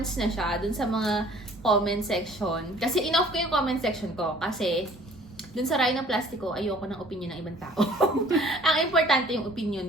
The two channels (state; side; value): normal; both; correlation 0.53